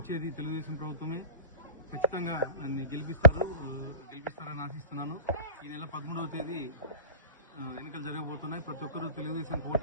తెలుగుదేశం ప్రభుత్వమే, ఖచ్చితంగా నన్ను గెలిపిస్తారని ఆశిస్తున్నాను. ఈ నెల 13వ తేదీ ఎన్నికలు జరగబోతున్నాయి. ప్రతి ఒక్కరూ తెలుగుదేశం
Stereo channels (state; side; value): inverted; both; correlation -0.37